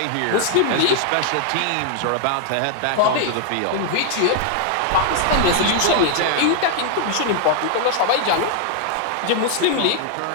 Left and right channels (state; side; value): different; both; correlation 0.00